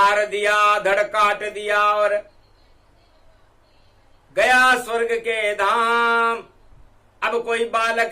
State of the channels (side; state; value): both; identical; correlation 1.00